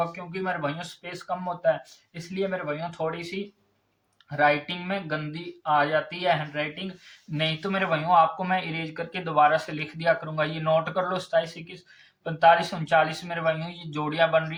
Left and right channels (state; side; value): identical; both; correlation 1.00